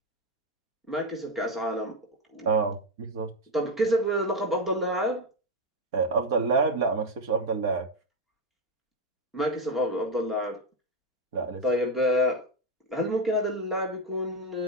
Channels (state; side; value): normal; both; correlation 0.08